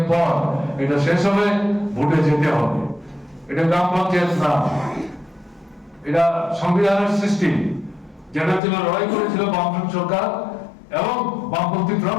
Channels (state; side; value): drops out; right; at 8.6 s